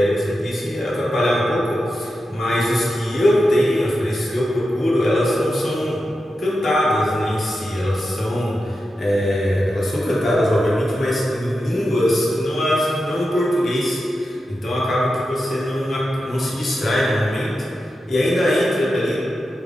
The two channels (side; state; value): both; normal; correlation 0.90